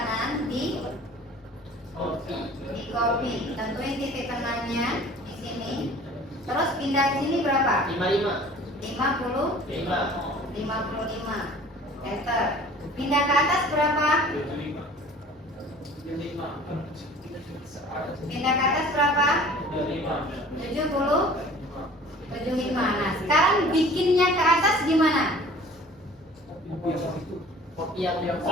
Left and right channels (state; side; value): normal; both; correlation 0.47